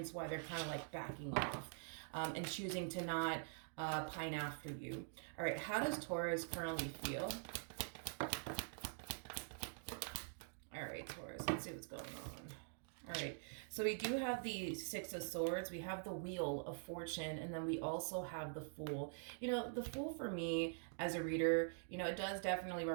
why they're kind of like backing off and choosing to not pine after you. All right, how does Taurus currently feel? All right, Taurus, let's see what's going on. All right, so we do have the Six of Swords, we have the Wheel of Fortune, and then we also have the Fool. You know, the Fool for me as a reader, you know, it does definitely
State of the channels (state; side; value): silent; left; digital silence